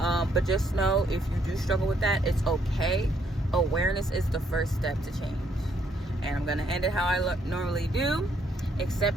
just know, if you do struggle with that, it's okay. Awareness is the first step to change. And I'm gonna end it how I normally do.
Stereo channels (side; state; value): both; normal; correlation 0.71